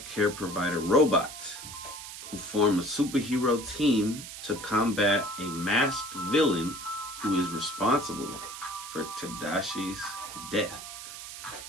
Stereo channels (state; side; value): noise; right; hiss, 11 dB below the sound